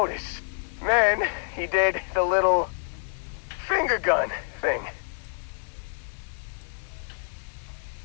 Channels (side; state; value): right; silent; digital silence